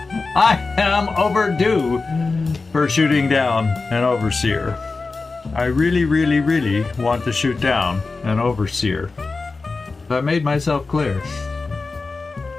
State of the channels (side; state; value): right; quieter; 3.9 dB